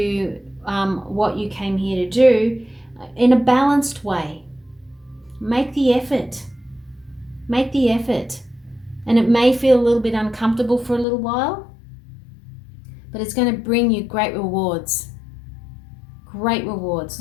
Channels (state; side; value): drops out; right; at 11.1 s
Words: what you came here to do in a balanced way. Make the effort. Make the effort. And it may feel a little bit uncomfortable for a little while, but it's going to bring you great rewards. Great rewards.